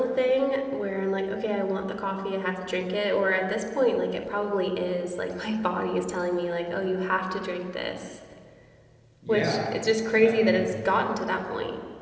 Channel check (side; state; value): both; identical; correlation 1.00